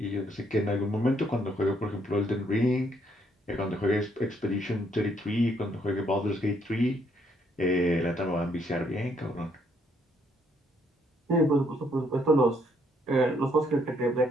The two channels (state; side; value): normal; both; correlation 0.70